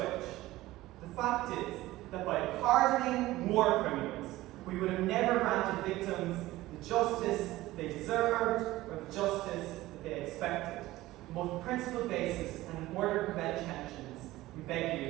The fact is that by pardoning war criminals, we would have never granted victims the justice they deserved or the justice that they expected. On both principled basis and in order to prevent tensions, we beg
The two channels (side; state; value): left; quieter; 17.3 dB